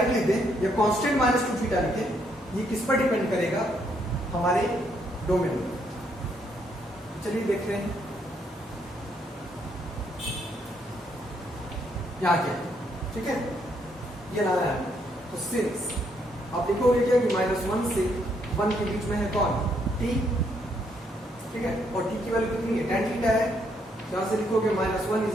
लिख दें या कांस्टेंट माइनस 2 थीटा लिखें, ये किस पर डिपेंड करेगा, हमारे डोमेन पर। चलिए देख रहे हैं यहाँ क्या, ठीक है, ये लाना है। तो सिंस आप लिखोगे क्या कि -1 से 1 के बीच में है कौन, t, ठीक है, और t की वैल्यू कितनी है, tan थीटा है। यहां से लिखोगे -1 is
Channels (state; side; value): normal; both; correlation 0.73